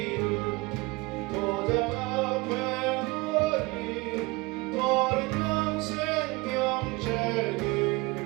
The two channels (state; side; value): quieter; left; 23.5 dB